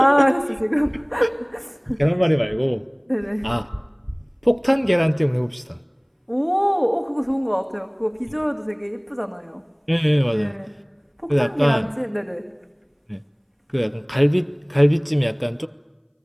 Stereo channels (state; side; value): identical; both; correlation 1.00